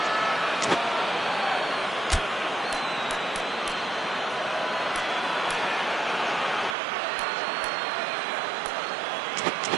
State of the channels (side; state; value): left; drops out; at 6.8 s